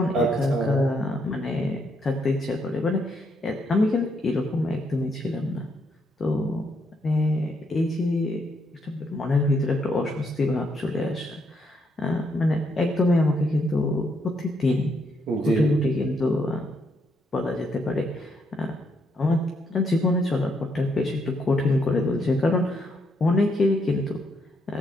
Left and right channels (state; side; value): normal; both; correlation 0.76